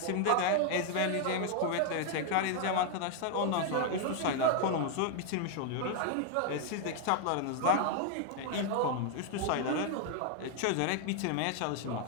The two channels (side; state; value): both; different; correlation 0.00